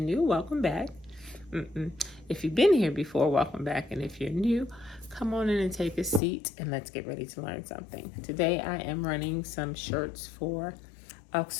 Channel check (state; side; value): drops out; right; at 6.2 s